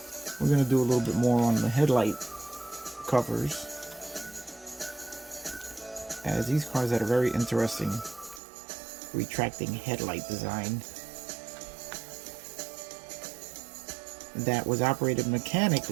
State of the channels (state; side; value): drops out; left; at 8.4 s